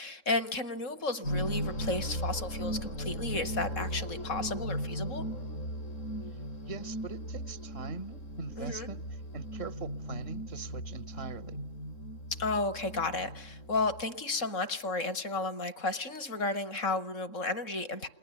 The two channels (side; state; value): right; late; 3.7 ms